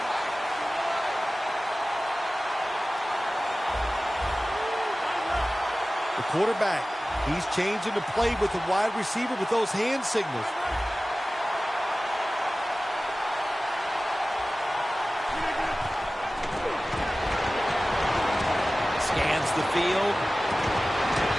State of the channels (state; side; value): normal; both; correlation 0.97